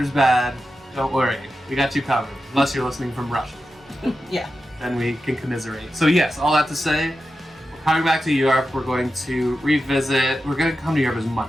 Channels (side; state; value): both; normal; correlation 0.91